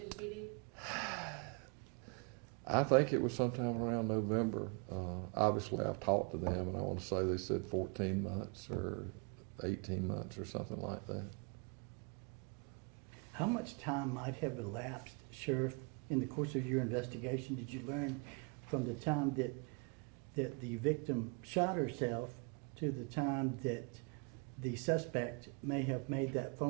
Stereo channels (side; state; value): left; quieter; 32.4 dB